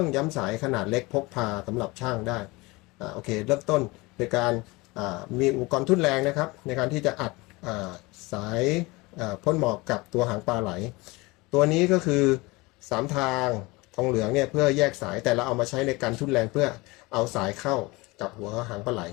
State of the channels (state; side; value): quieter; right; 23.4 dB